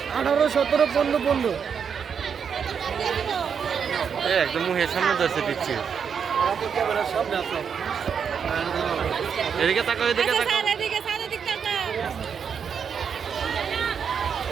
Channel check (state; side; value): quieter; left; 7.0 dB